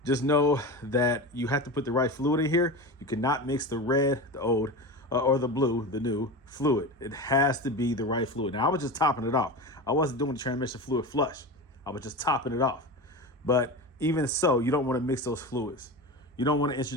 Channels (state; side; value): normal; both; correlation 0.26